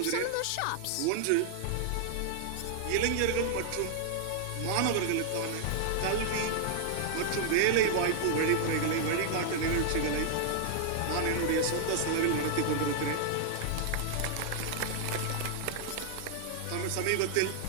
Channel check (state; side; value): different; both; correlation -0.01